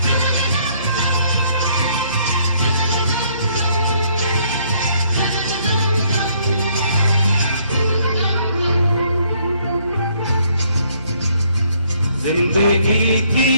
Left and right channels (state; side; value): inverted; both; correlation -0.66